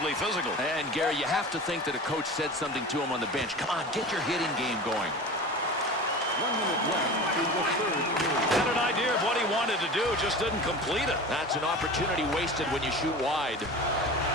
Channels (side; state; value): both; normal; correlation 0.34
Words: physical. And Gary, you have to think that a coach said something to him on the bench. Come on, get your hitting game going. 1 minute left in the third period. Had an idea of what he wanted to do, just didn't complete it. That's an opportunity wasted when you shoot wide.